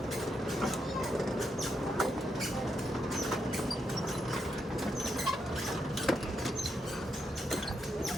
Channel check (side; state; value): both; normal; correlation 0.81